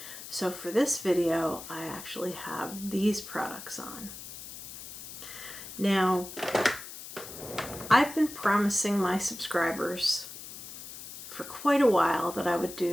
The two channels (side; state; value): left; noise; hiss, 12 dB below the sound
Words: So for this video, I actually have these products on. Now, I've been promising my subscribers for quite a while that I would